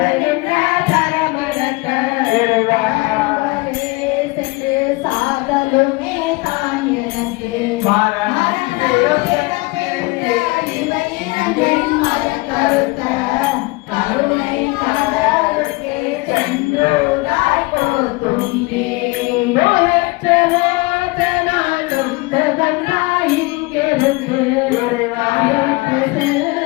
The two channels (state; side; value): quieter; right; 24.7 dB